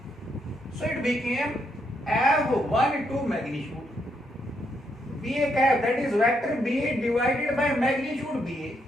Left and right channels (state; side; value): normal; both; correlation 0.77